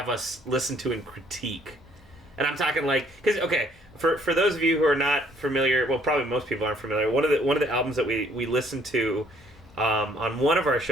us listen to and critique? And I'm talking because for those of you who are not familiar, well, probably most people aren't familiar. One of the albums that we listened to. On one of our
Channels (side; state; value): both; normal; correlation 0.63